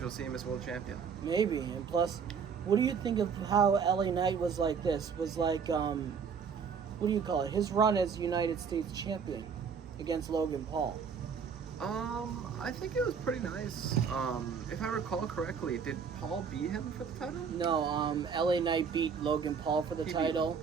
we'll see him as world champion. Maybe. And plus, what do you think of how LA Knight was like this? Was like what do you call it? His run as United States champion against Logan Paul. I think it was pretty nice. If I recall correctly, did Paul beat him for the title? No, LA Knight beat Logan Paul for the title,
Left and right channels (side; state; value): left; quieter; 6.3 dB